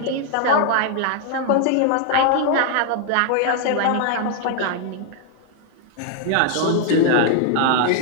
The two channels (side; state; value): both; different; correlation 0.00